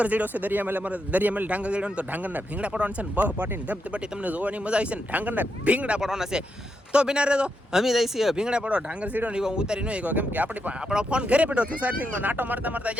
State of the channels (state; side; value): normal; both; correlation 0.83